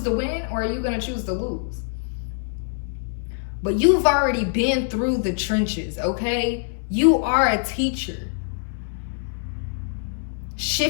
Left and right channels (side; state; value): right; silent; digital silence